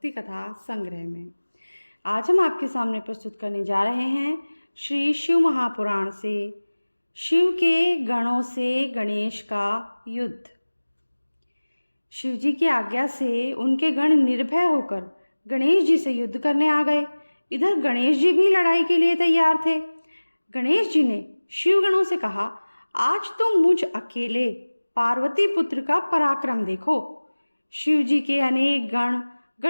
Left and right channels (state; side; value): inverted; both; correlation -1.00